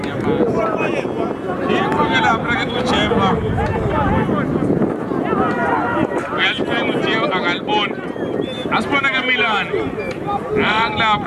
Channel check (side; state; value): both; identical; correlation 1.00